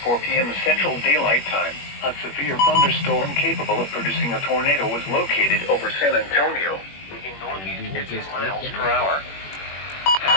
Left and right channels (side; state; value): right; late; 21 ms